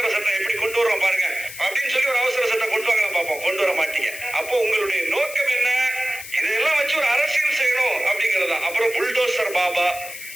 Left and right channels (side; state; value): left; noise; hiss, 12 dB below the sound